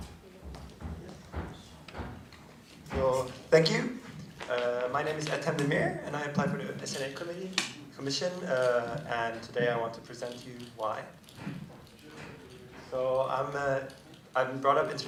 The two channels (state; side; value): identical; both; correlation 1.00